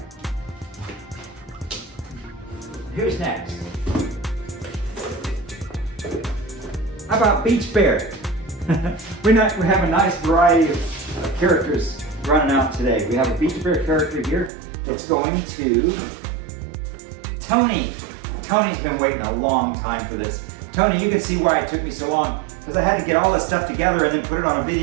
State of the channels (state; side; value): drops out; left; at 14.5 s